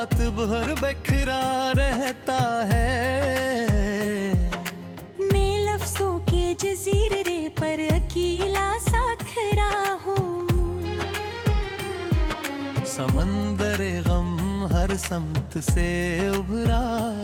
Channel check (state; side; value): identical; both; correlation 1.00